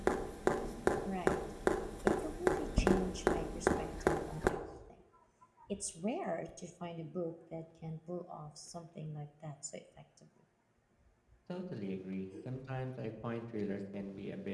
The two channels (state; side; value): identical; both; correlation 1.00